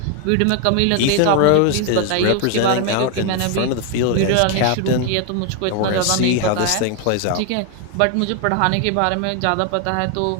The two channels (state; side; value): different; both; correlation 0.01